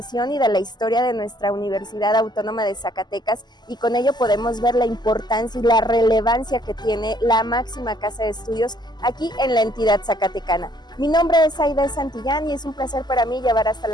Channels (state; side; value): late; right; 0.21 ms